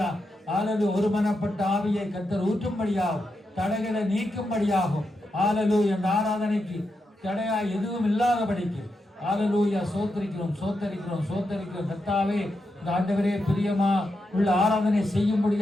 ஹல்லேலூயா. ஒருமனப்பட்ட ஆவியை கர்த்தர் ஊற்றும்படியாகும், தடைகளை நீக்கும்படியாகும். ஹல்லேலூயா. இந்த ஆராதனைக்கு தடையா எதுவும் இல்லாதபடிக்கு ஹல்லேலூயா சோத்தரிக்கிறோம் கர்த்தாவே. இந்த ஆண்டவரே பிரியமா உள்ள ஆராதனை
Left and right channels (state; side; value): normal; both; correlation 0.86